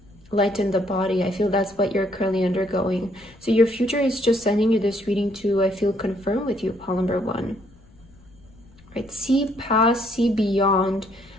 lighten the body. I feel that's what you're currently undergoing. So your future is just sending you this reading to, I feel, confirm with you, pile number 1. Right? See past, see beyond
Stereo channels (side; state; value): left; noise; rumble, 27 dB below the sound